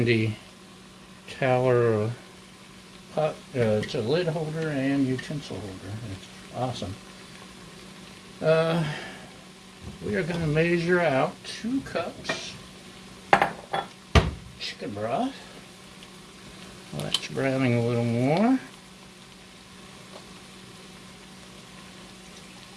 Tower pot. It's a lid holder and utensil holder. It's awesome. We are going to measure out 2 cups chicken broth. Well, that's browning a little more.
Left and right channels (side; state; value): both; identical; correlation 1.00